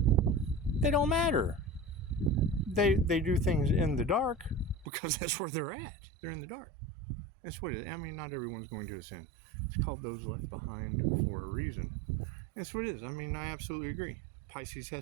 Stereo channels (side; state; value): left; drops out; at 4.9 s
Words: They don't matter. They do things in the dark because that's where they're at. They're in the dark. That's what it is. I mean, not everyone's going to ascend. It's called those left behind for a reason. That's what it is. I mean, I absolutely agree. Pisces